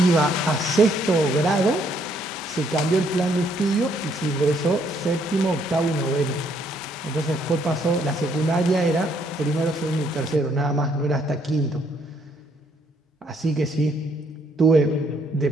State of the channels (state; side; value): normal; both; correlation 0.69